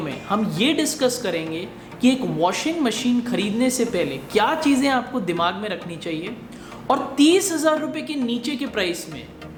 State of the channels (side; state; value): both; identical; correlation 1.00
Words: हम ये डिस्कस करेंगे कि एक वॉशिंग मशीन खरीदने से पहले क्या चीज़ें आपको दिमाग में रखनी चाहिए और 30,000 रुपये के नीचे के प्राइस में